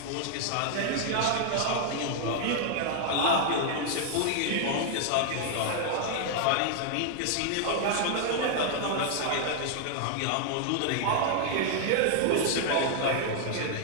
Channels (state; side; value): different; both; correlation 0.00